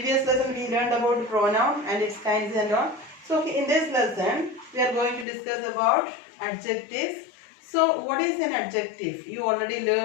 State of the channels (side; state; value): right; drops out; at 5.2 s